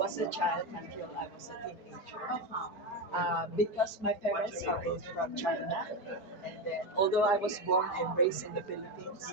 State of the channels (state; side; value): late; right; 5.0 ms